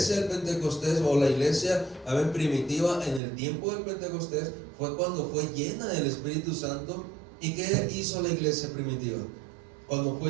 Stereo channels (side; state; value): left; drops out; at 3.2 s